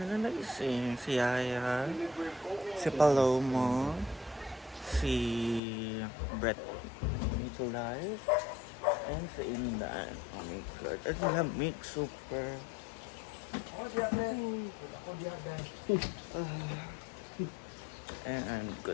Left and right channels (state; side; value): drops out; right; at 5.6 s